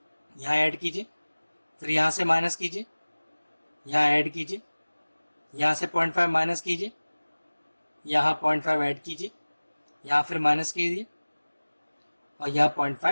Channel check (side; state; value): both; inverted; correlation -1.00